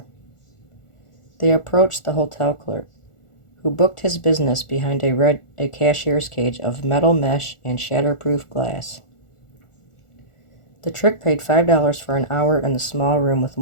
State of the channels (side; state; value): right; late; 1.4 ms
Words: They approached the hotel clerk, who booked his business behind a cashier's cage of metal mesh and shatterproof glass. The trick paid $5 for an hour in the small room with